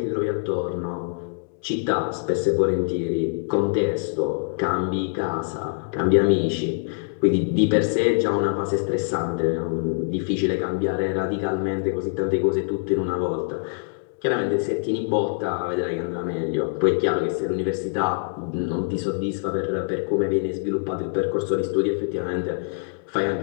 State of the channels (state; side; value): silent; right; digital silence